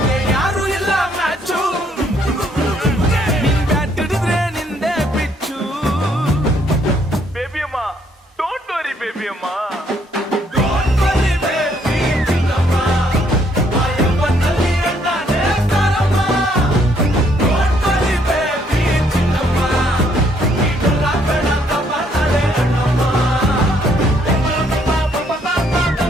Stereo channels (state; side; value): normal; both; correlation 0.68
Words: yaru illa matchu Nin bat hididre ninde pitchu Baby amma, don't worry baby amma. Don't worry baby chinnamma. Vayavanalli annane karamma. Don't worry baby chinnamma. Idalla beda tapatale annamma.